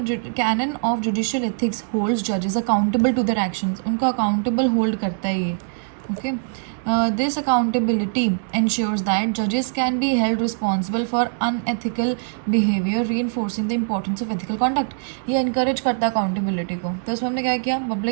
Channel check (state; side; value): silent; left; digital silence